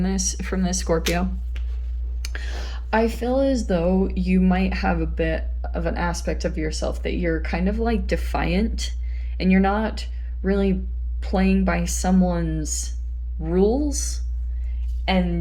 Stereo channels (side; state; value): both; identical; correlation 1.00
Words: this from this, Scorpio? I feel as though you might have a bit of an aspect of yourself that you're kind of like defiant, and you're not really playing by someone's rules.